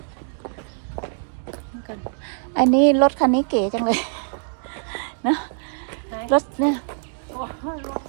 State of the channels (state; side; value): silent; left; 63 dB below the other